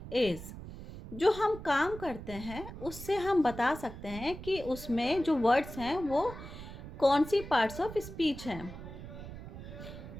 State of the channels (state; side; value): noise; right; rumble, 12 dB below the sound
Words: is. जो हम काम करते हैं उससे हम बता सकते हैं कि उसमें जो वर्ड्स हैं वो कौन सी पार्ट्स ऑफ स्पीच हैं.